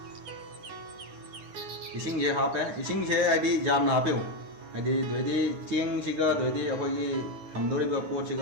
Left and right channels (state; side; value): late; left; 9.8 ms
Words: इसिंगे हापे इसिंगे हाइदी जामना हापिउ हाइदी दोइदी चेंगसिगा दोइदी अखोइगी हमदोरिबा